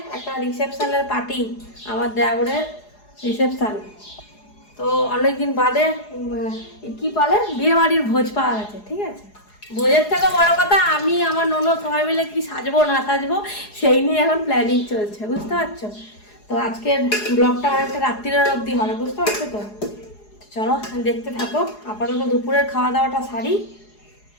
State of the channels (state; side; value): late; right; 4.8 ms